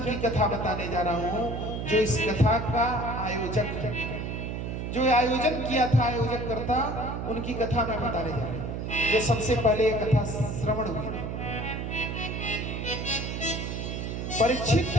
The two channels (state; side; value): noise; right; hum, 4 dB below the sound